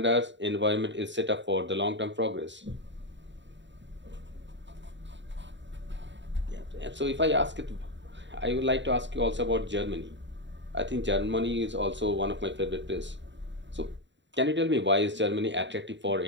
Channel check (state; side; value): late; left; 0.53 ms